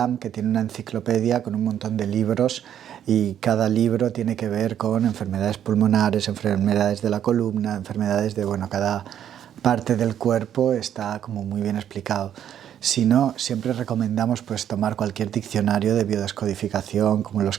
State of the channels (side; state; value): left; quieter; 10.0 dB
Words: que tiene una enciclopedia con un montón de libros y cada libro tiene que ver con enfermedades pulmonares, enfermedades de la columna, enfermedades de, bueno, cada parte del cuerpo está como muy bien explicado. Si no, siempre recomendamos pues tomar cualquier diccionario de biodescodificación, como los